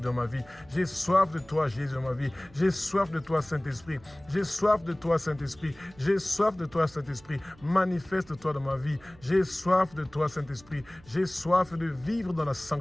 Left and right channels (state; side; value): noise; right; hum, 25 dB below the sound